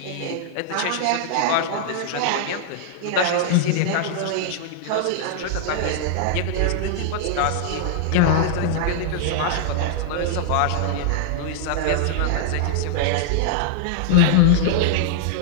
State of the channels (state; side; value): different; both; correlation 0.00